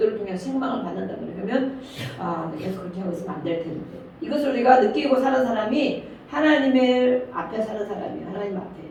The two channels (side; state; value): both; identical; correlation 1.00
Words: 통해서 책망을 받는다면 그러면 내가 계속 그렇게 하고 있으면 안 될 텐데. 이것을 우리가 느끼고 사는 사람이 하나님의 앞에 사는 사람이에요. 하나님 앞에.